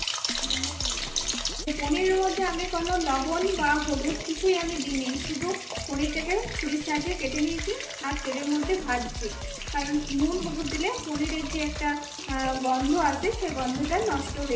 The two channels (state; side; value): identical; both; correlation 1.00